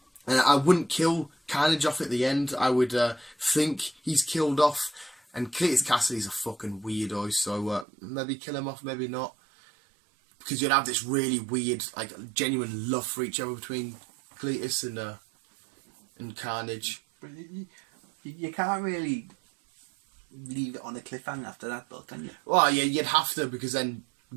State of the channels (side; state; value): left; drops out; at 7.9 s